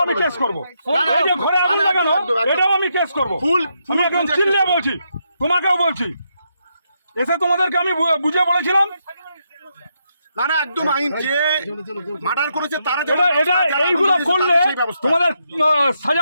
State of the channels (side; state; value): both; inverted; correlation -0.80